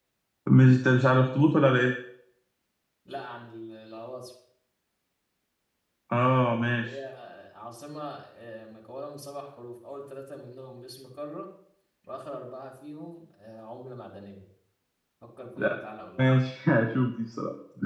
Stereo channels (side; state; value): both; identical; correlation 1.00